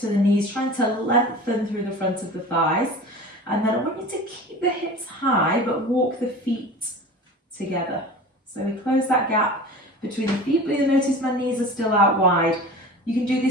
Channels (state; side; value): normal; both; correlation 0.37